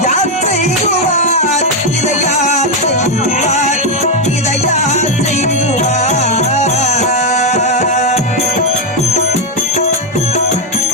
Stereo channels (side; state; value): both; normal; correlation 0.04